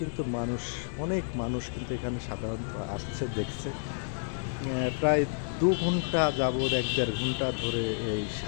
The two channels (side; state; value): right; silent; digital silence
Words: অনেক মানুষ কিন্তু এখানে সাধারণত আসছে, দেখছে। প্রায় 2 ঘন্টা যাবৎ 1-1.5 ঘন্টা ধরে এই